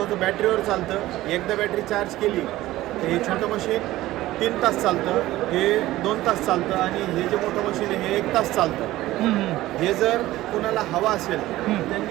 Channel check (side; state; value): left; quieter; 16.3 dB